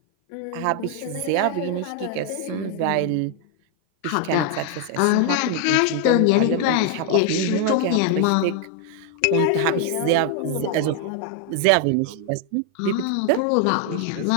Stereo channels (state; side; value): different; both; correlation 0.00